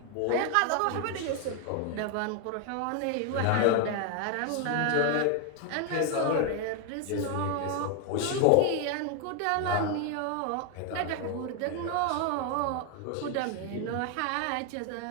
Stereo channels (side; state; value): both; different; correlation 0.01